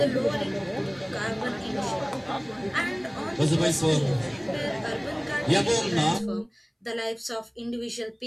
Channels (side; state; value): both; identical; correlation 1.00